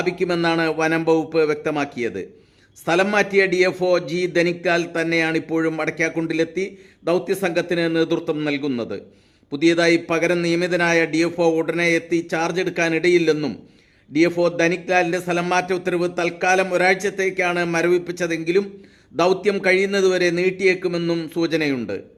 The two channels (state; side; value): identical; both; correlation 1.00